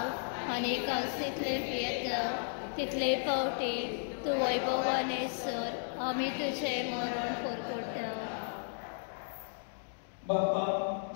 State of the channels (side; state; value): right; silent; digital silence